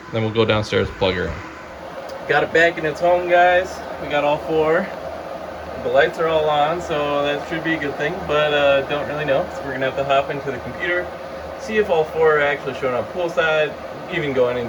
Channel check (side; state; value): both; identical; correlation 1.00